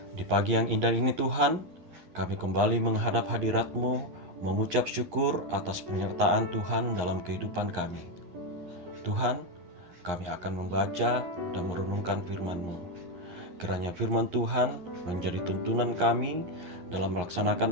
Di pagi yang indah ini Tuhan, kami kembali menghadap hadirat-Mu, mengucap syukur atas penyertaan Tuhan dalam kehidupan kami. Tuhan, kami akan membaca dan merenungkan firman-Mu. Kiranya firman Tuhan menjadi tuntunan kami dalam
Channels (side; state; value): left; late; 11 ms